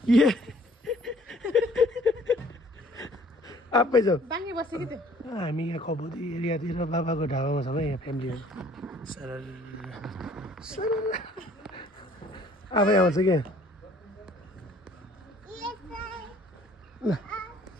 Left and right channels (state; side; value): normal; both; correlation 0.57